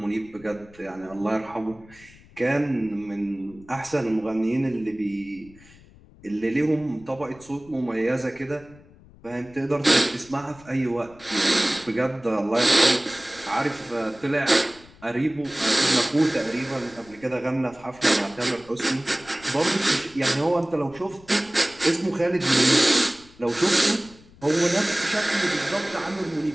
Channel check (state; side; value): noise; left; rumble, 24 dB below the sound